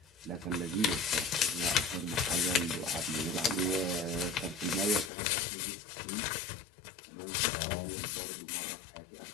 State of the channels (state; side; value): drops out; right; at 5.1 s